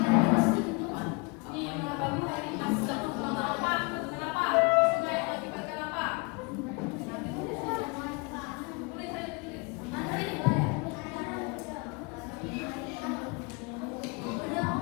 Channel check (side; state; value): right; quieter; 29.4 dB